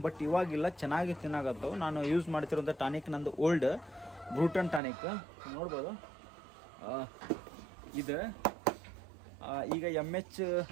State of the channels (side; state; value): left; drops out; at 4.8 s